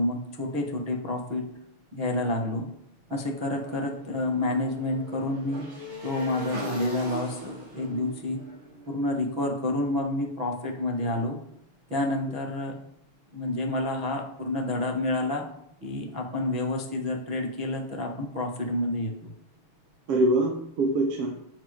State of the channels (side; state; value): left; late; 6.2 ms